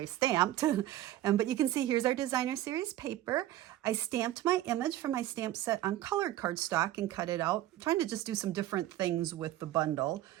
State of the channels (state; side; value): quieter; left; 13.9 dB